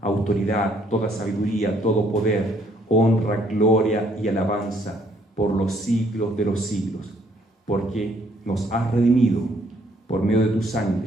autoridad, toda sabiduría, todo poder, honra, gloria y alabanza por los siglos de los siglos, porque nos has redimido por medio de tu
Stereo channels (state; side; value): normal; both; correlation 0.66